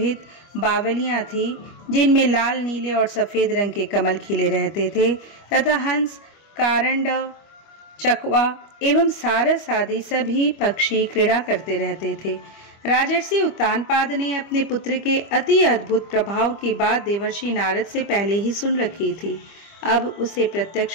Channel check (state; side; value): late; right; 25 ms